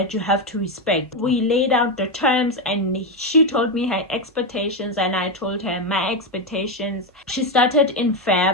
you have to respect. We laid out the terms and she told me her expectations and I told her my expectations. She started in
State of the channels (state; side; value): normal; both; correlation 0.08